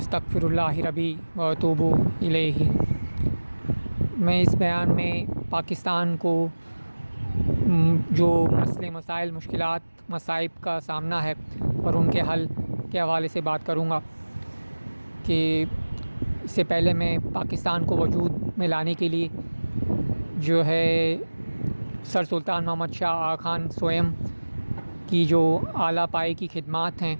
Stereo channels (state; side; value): inverted; both; correlation -1.00